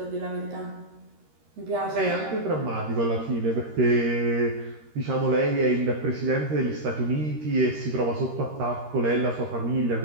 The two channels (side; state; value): left; late; 13 ms